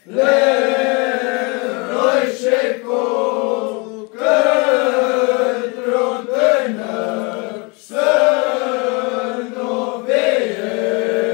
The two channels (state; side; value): quieter; right; 30.3 dB